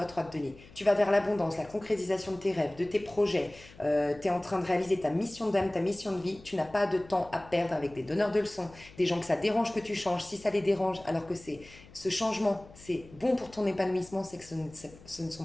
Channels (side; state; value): left; noise; hum, 22 dB below the sound